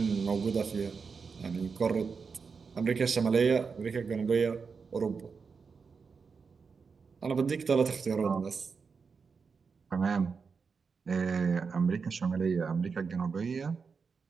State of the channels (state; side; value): quieter; left; 5.3 dB